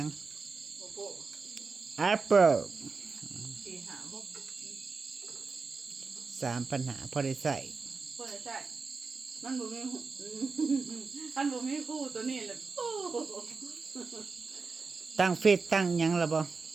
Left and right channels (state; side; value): quieter; left; 4.5 dB